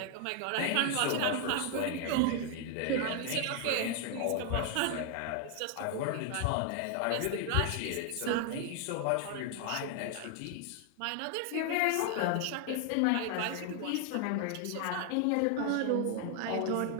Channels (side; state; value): both; different; correlation 0.00